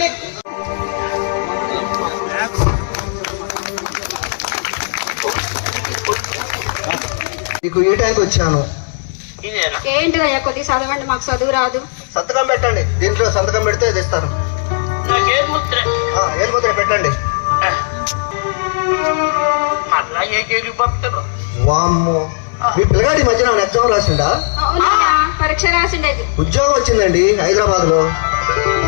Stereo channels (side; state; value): right; silent; digital silence